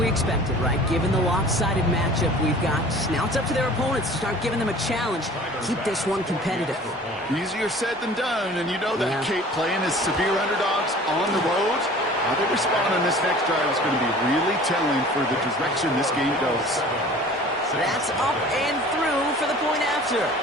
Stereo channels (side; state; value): both; normal; correlation 0.46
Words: expected, right? Given the lopsided matchup we've got. Now it's up to their opponents to start giving them a challenge. Keep this one competitive. Easier said than done, and you know that Kate playing as severe underdogs on the road. How they respond on this next drive is going to be really telling for the direction this game goes. That's up and through for the point after.